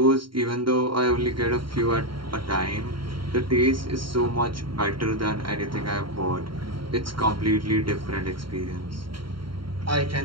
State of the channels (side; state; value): left; late; 0.73 ms